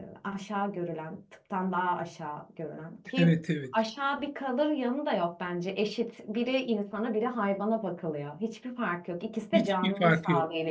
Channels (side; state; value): both; identical; correlation 1.00